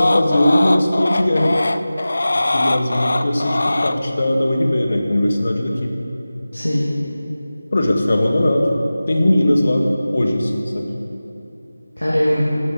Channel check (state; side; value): inverted; both; correlation -0.97